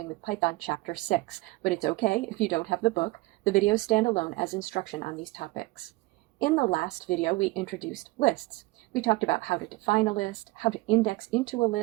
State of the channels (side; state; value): left; quieter; 21.7 dB